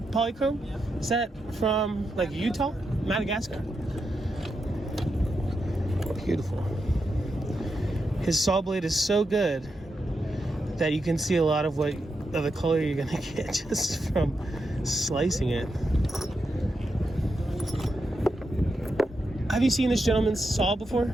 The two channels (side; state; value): both; normal; correlation 0.86